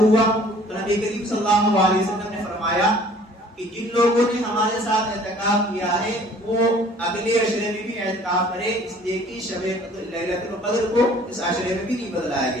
تو نبی کریم صلی اللہ علیہ وسلم نے فرمایا کہ جن لوگوں نے ہمارے ساتھ اعتکاف کیا ہے وہ اگلے عشرے میں بھی اعتکاف کرے، اس لیے کہ شب لیلۃ القدر کو اس عشرے میں بھی نہیں بدلایا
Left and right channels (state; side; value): normal; both; correlation 0.53